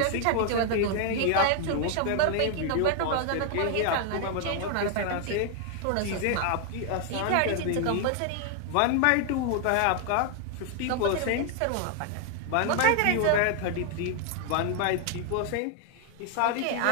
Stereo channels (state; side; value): different; both; correlation 0.00